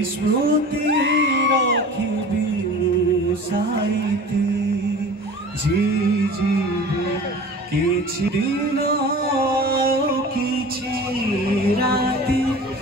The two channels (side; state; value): both; normal; correlation 0.39